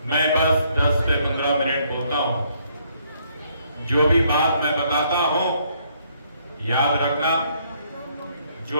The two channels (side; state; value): both; inverted; correlation -0.69